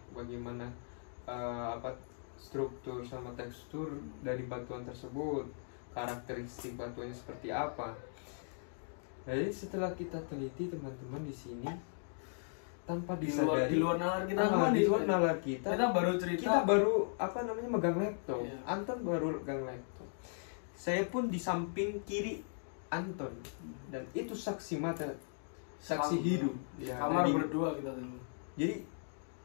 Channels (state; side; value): silent; right; digital silence